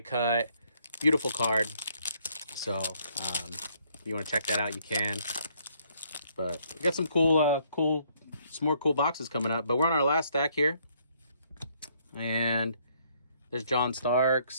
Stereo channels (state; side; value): inverted; both; correlation -0.67